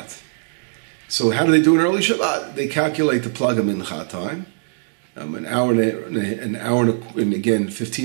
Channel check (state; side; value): silent; left; 65 dB below the other